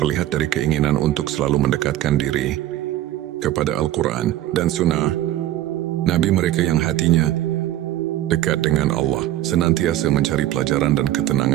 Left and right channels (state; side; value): quieter; left; 13.8 dB